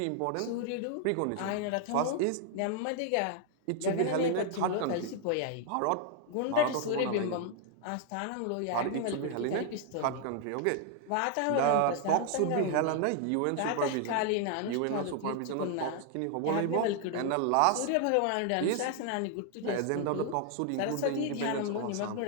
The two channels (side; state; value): both; different; correlation 0.00